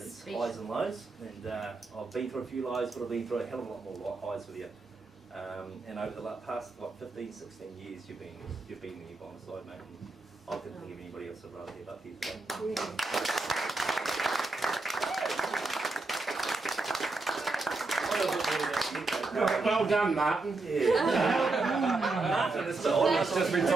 its highs and lows, and I've been through a few lows, but I've been through a hell of a lot more highs with you. And over the past 15, 16 years, you've been there by my side, mate. And I couldn't think of anybody else I'd rather have up here today. Well done, Martin. Martin, it's almost just been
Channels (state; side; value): quieter; left; 3.5 dB